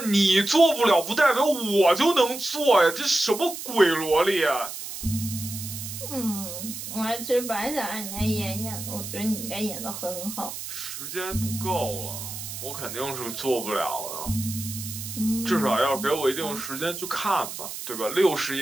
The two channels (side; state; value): right; noise; hiss, 8 dB below the sound